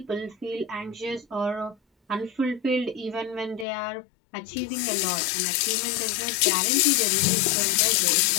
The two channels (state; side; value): drops out; right; at 3.7 s